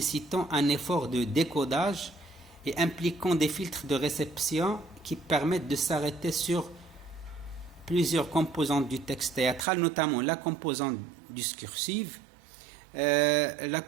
un effort de décodage et impliquant des filtres de réception qui permettent de s'arrêter sur plusieurs composantes du texte théâtral, notamment la composante discursive, la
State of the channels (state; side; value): drops out; left; at 9.7 s